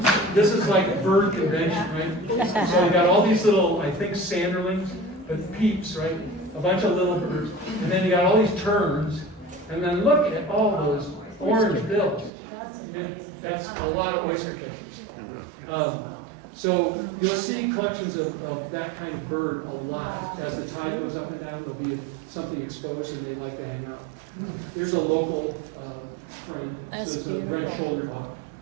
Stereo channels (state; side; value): drops out; left; at 12.3 s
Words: this is like bird convention, right? So you got all these little, I think, sanderlings, but peeps, right? A bunch of little birds. And then you got all these terns. And then look at all those orange bills. And that's a lot of oyster catchers. So you'll see collections of that kind of bird a lot. As the tide goes up and down, there'll be something exposed and they like to hang out. Here's a local friend. This is a red-shouldered hawk.